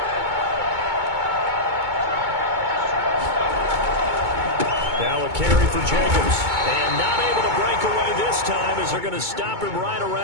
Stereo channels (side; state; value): left; late; 2.2 ms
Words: Now a carry for Jacobs. And not able to break away this time as they're going to stop him right